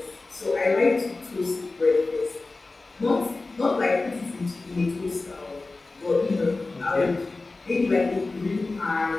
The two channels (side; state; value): right; quieter; 3.4 dB